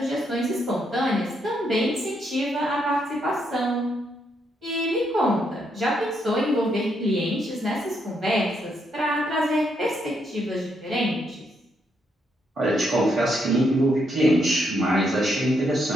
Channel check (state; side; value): normal; both; correlation 0.77